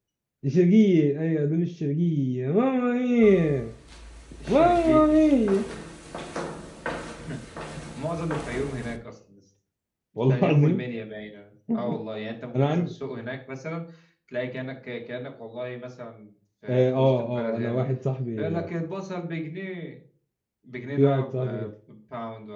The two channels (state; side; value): identical; both; correlation 1.00